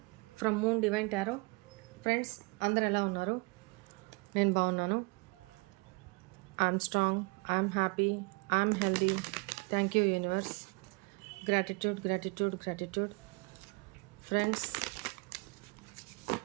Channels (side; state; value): left; quieter; 29.8 dB